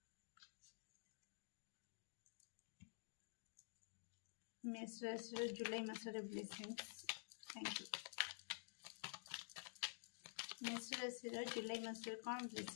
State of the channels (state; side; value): silent; right; digital silence